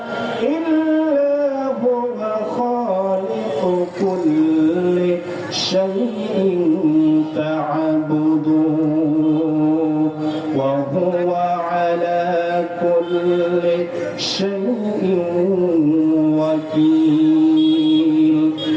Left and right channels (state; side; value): identical; both; correlation 1.00